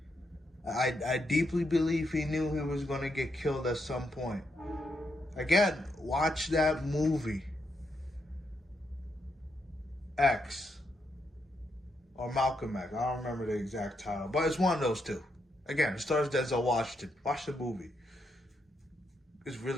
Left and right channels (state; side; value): normal; both; correlation 0.80